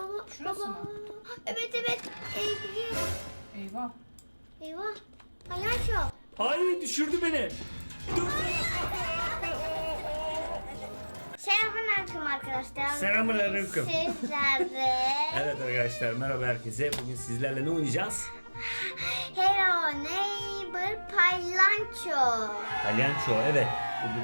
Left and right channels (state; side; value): inverted; both; correlation -1.00